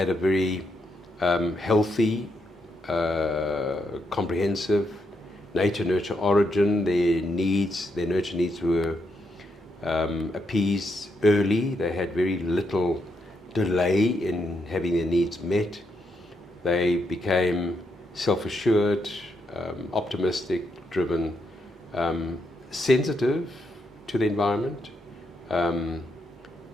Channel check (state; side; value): normal; both; correlation 0.80